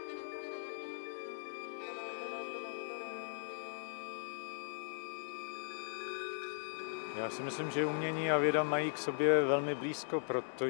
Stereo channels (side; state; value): right; silent; digital silence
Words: Já si myslím, že umění a věda mají k sobě velmi blízko,